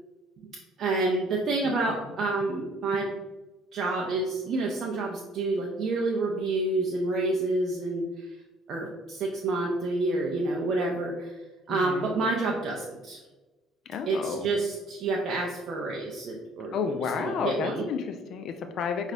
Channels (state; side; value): normal; both; correlation 0.57